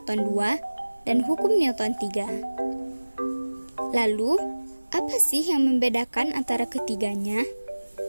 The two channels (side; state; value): both; inverted; correlation -1.00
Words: 2, dan hukum Newton 3. Lalu, apa sih yang membedakan antara ketiganya?